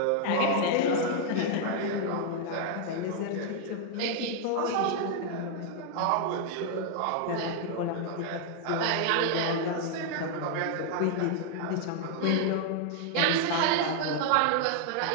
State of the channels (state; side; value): different; both; correlation 0.00